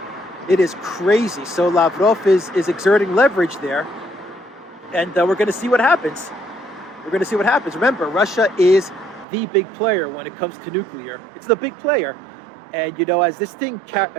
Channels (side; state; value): left; drops out; at 9.2 s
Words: It is crazy. So Lavrov is exerting leverage there. And we're going to see what happens. We're going to see what happens. Remember, Russia is the big player when it comes to nuclear. It's the big player. And, as this